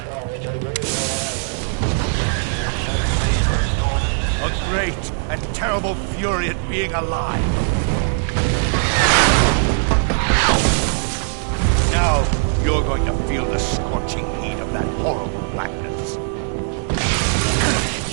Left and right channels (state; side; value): silent; left; 66 dB below the other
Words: A great and terrible fury at being alive. Now you're going to feel the scorching heat of that horrible blackness.